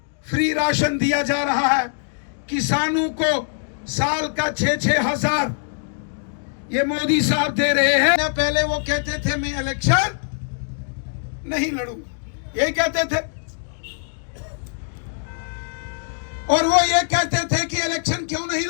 फ्री राशन दिया जा रहा है। किसानों को साल का 6-6 हजार ये मोदी साहब दे रहे हैं। पहले वो कहते थे मैं इलेक्शन नहीं लड़ूंगा, यही कहते थे। और वो ये कहते थे कि इलेक्शन क्यों नहीं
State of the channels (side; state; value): right; silent; digital silence